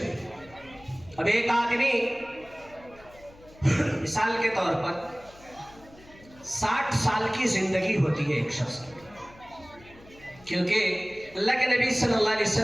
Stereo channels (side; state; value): left; noise; hum, 24 dB below the sound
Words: اب ایک آدمی مثال کے طور پر 60 سال کی زندگی ہوتی ہے ایک شخص کی، کیونکہ اللہ کے نبی صلی اللہ علیہ